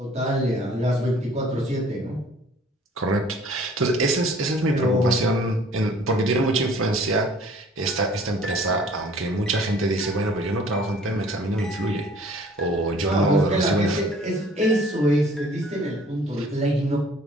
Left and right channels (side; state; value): both; normal; correlation 0.53